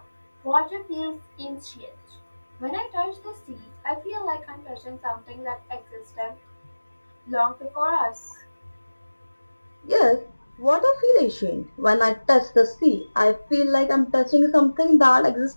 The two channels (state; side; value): inverted; both; correlation -1.00